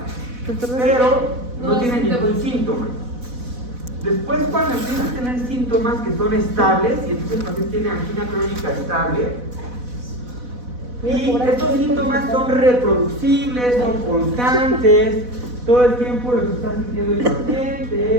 pero no tiene ningún síntoma. Después, cuando empieza a tener síntomas que son estables, y entonces el paciente tiene angina crónica estable, y estos síntomas son reproducibles, son constantes, todo el tiempo los está sintiendo el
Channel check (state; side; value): late; left; 4.1 ms